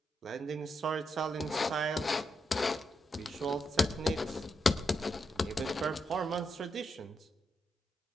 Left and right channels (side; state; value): both; normal; correlation 0.83